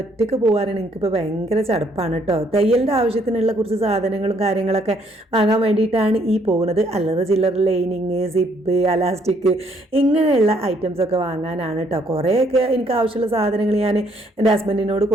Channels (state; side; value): normal; both; correlation 0.67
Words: ഒറ്റയ്ക്ക് പോകാനാണ് എനിക്കിപ്പോൾ ഭയങ്കര ചടപ്പാണ് കേട്ടോ. തയ്യലിൻ്റെ ആവശ്യത്തിനുള്ള കുറച്ച് സാധനങ്ങളും കാര്യങ്ങളൊക്കെ വാങ്ങാൻ വേണ്ടിയിട്ടാണ് ഈ പോകുന്നത്. അല്ലറ ചില്ലറ ലൈനിങ്, സിപ്പ്, അലാസ്റ്റിക് ഇങ്ങനെയുള്ള ഐറ്റംസൊക്കെ വാങ്ങാനാണ് കേട്ടോ. കുറേയൊക്കെ എനിക്ക് ആവശ്യമുള്ള സാധനങ്ങൾ ഞാൻ എൻ്റെ ഹസ്ബൻഡിനോട്